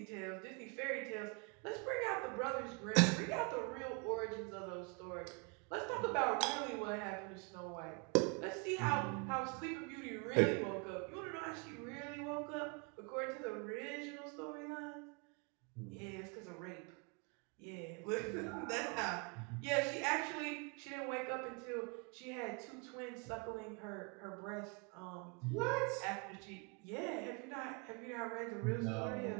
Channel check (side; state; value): left; quieter; 33.4 dB